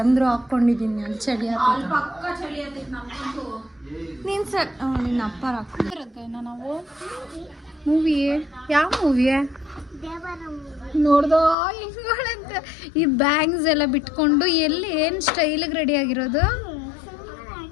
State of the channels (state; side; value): drops out; right; at 11.6 s